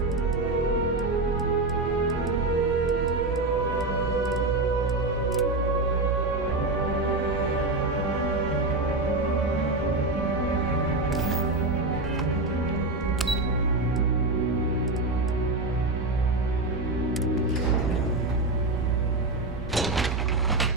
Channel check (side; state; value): left; quieter; 3.1 dB